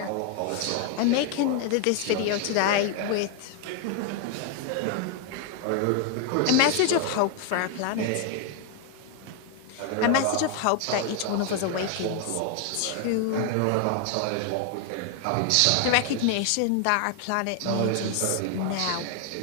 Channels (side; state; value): both; different; correlation 0.00